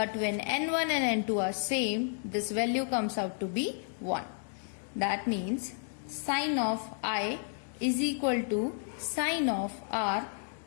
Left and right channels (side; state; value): right; silent; 57 dB below the other